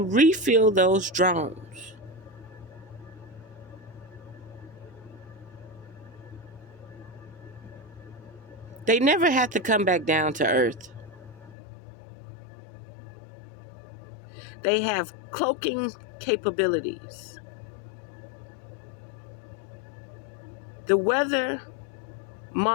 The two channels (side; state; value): right; drops out; at 11.6 s